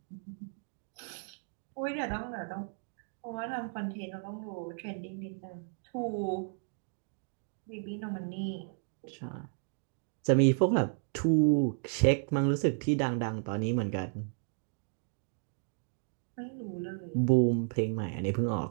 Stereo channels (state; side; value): silent; left; 55 dB below the other